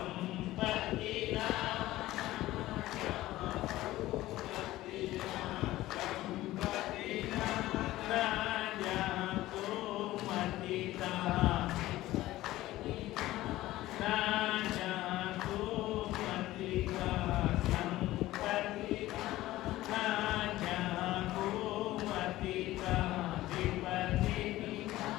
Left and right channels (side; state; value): right; quieter; 16.3 dB